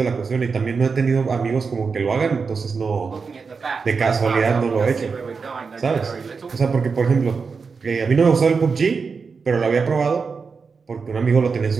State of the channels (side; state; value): left; quieter; 5.1 dB